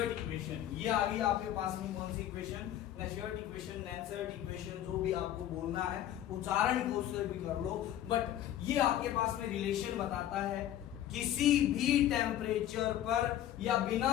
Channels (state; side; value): quieter; right; 11.9 dB